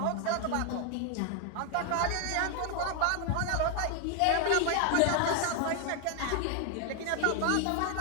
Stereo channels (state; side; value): different; both; correlation 0.00